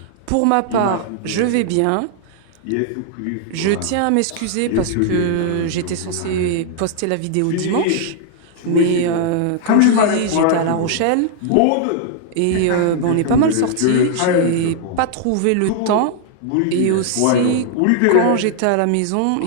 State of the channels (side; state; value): both; different; correlation 0.00